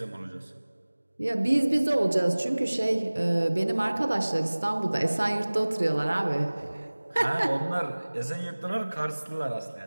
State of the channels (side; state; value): both; inverted; correlation -1.00